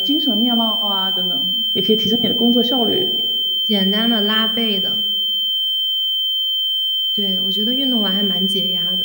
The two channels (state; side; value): identical; both; correlation 1.00